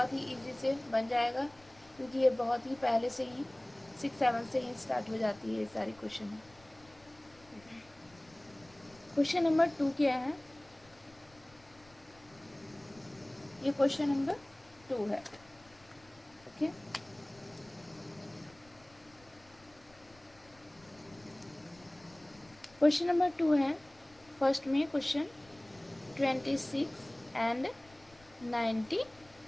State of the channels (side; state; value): left; noise; rumble, 27 dB below the sound